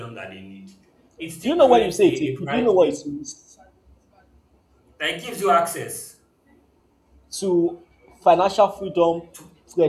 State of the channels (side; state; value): both; identical; correlation 1.00